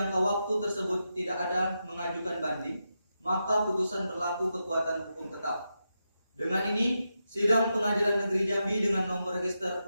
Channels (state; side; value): inverted; both; correlation -0.87